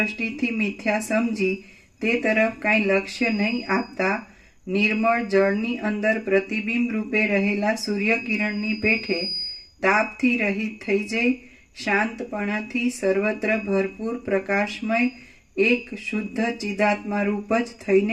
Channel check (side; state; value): both; identical; correlation 1.00